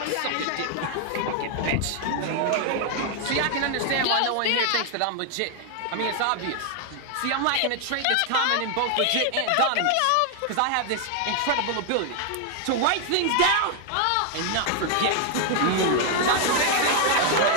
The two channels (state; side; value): different; both; correlation 0.00